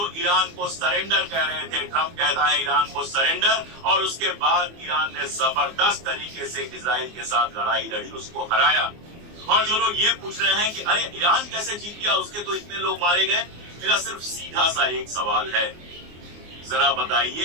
ईरान को सरेंडर कह रहे थे। ट्रंप कहता है ईरान को सरेंडर, और उसके बाद ईरान ने जबरदस्त तरीके से इजराइल के साथ लड़ाई लड़ी, उसको हराया। और जो लोग ये पूछ रहे हैं कि अरे ईरान कैसे जीत गया, उसके तो इतने लोग मारे गए, मेरा सिर्फ सीधा सा एक सवाल है, जरा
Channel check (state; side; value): late; left; 24 ms